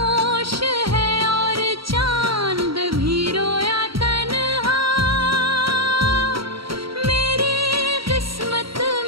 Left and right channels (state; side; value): late; left; 0.75 ms